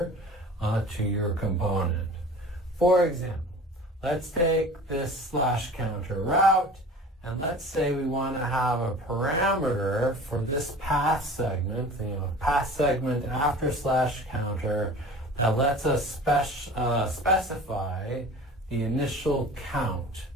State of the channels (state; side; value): normal; both; correlation 0.41